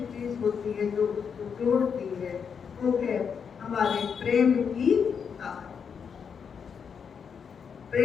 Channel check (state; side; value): quieter; right; 6.7 dB